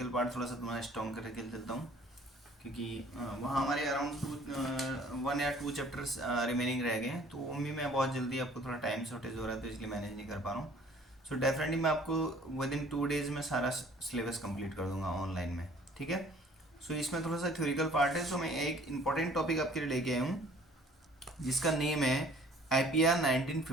पार्ट थोड़ा सा तुम्हारा स्ट्रॉन्ग करके चलता हूँ, क्योंकि वहाँ हमारे अराउंड 1 या 2 चैप्टर्स रिमेनिंग रह गए हैं। तो उनमें मैं बहुत जल्दी, आपको थोड़ा टाइम शॉर्टेज हो रहा है तो इसलिए मैनेज नहीं कर पा रहा हूँ। सो डेफिनेटली मैं आपको विद इन 2 days में सारा सिलेबस कंप्लीट कर दूंगा ऑनलाइन में, ठीक है। सो इसमें थोड़ा सा थ्योरिकल पार्ट है। सो मैं एक इंपॉर्टेंट टॉपिक आपके लिए लेके आया हूँ जिसका नेम है IPR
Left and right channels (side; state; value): both; normal; correlation 0.54